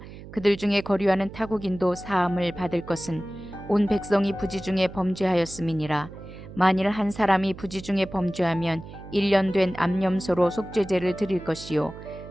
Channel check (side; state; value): right; noise; hum, 15 dB below the sound